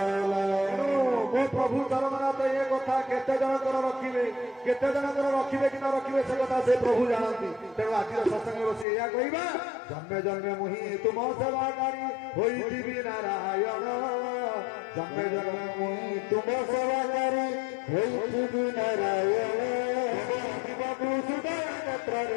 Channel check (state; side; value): drops out; right; at 8.8 s